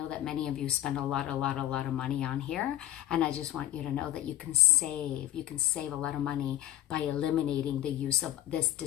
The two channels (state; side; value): quieter; right; 13.7 dB